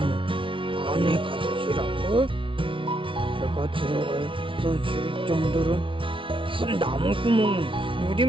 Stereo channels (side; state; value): left; late; 0.25 ms